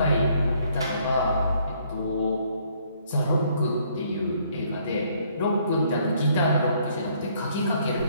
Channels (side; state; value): both; inverted; correlation -0.65